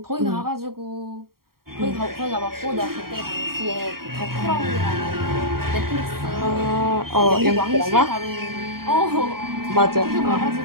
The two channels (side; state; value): left; late; 0.93 ms